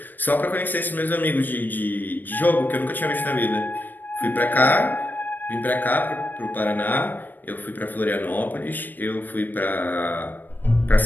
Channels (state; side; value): late; right; 0.089 ms